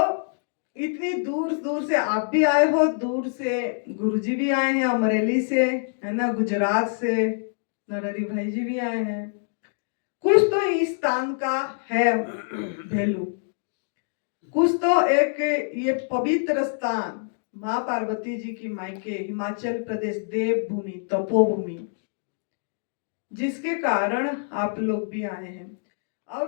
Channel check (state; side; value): silent; right; digital silence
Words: इतनी दूर दूर से आप भी आए हो, दूर से गुरुजी भी आए हैं, अमरेली से, है ना, गुजरात से नरहरि भाई जी भी आए हैं। कुछ तो इस स्थान का है वैल्यू, कुछ तो एक ये पवित्र स्थान, माँ पार्वती जी की मायके, हिमाचल प्रदेश, देवभूमि, तपोभूमि, जिसके कारण आप लोग भी आए हैं।